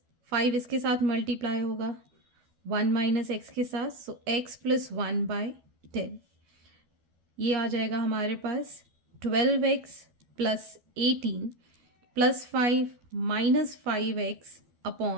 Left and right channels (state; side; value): late; left; 12 ms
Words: 5 इसके साथ मल्टीप्लाई होगा 1 माइनस एक्स के साथ. So x plus 1 by 10. ये आ जाएगा हमारे पास 12x plus 18 plus 5 minus 5x